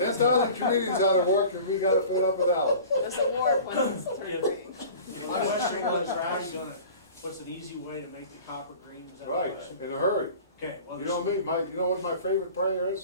comedians out of work and we got to fill up without. This award when it's turned green. The question was, what's an easy way to make the copper green? Was that the Right, question? in a hurry. Okay, well, You know me, you know what my favorite prayer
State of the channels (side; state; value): both; inverted; correlation -0.42